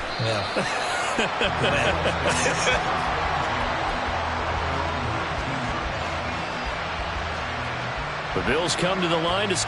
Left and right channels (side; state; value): both; identical; correlation 1.00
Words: Yeah. The Bills come to the line to